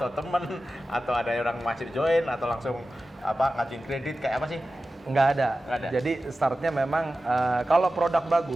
temen atau ada orang masih join atau langsung ngajuin kredit kayak apa sih? Nggak ada. Nggak ada. Jadi startnya memang kalau produk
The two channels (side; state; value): both; normal; correlation 0.94